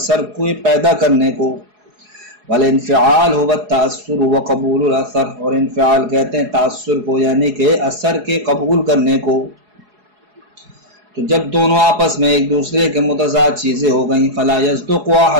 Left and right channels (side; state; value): left; late; 4.8 ms